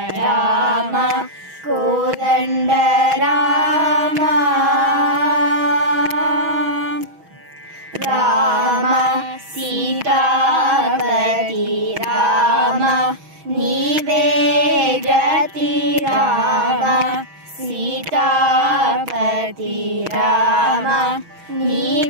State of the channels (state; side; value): late; left; 6.2 ms